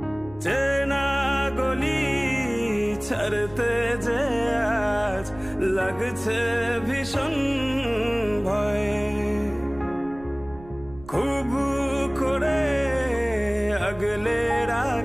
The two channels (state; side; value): noise; right; rumble, 19 dB below the sound